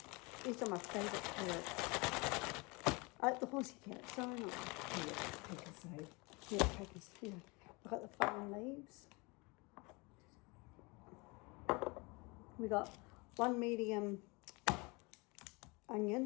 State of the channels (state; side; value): quieter; right; 27.5 dB